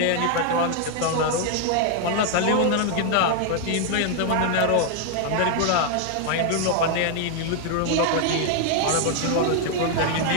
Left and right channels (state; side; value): different; both; correlation 0.00